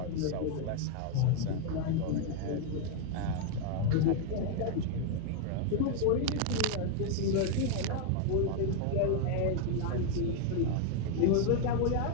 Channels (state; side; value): different; both; correlation 0.01